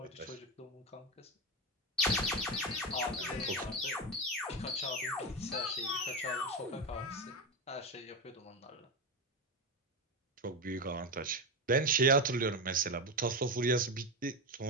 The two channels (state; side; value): normal; both; correlation 0.15